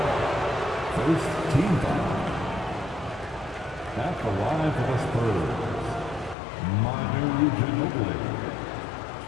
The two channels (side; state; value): right; drops out; at 6.4 s